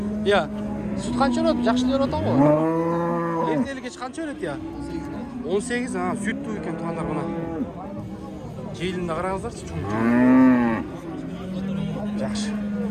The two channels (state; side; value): identical; both; correlation 1.00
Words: Я. Süt kança berет? Жакшы берип атабы? Эртели кеч канча берет я? 18, süt туу экен тугандар мына. Желинде караңыздарчы, чоң. Жакшы.